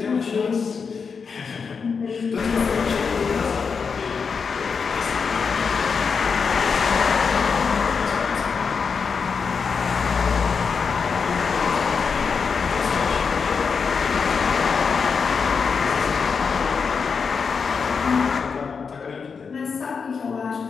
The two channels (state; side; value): quieter; right; 5.6 dB